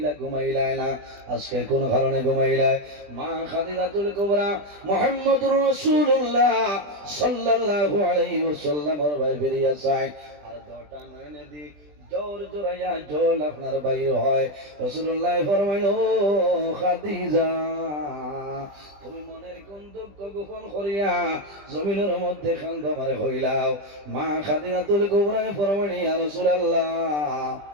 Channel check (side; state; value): left; late; 20 ms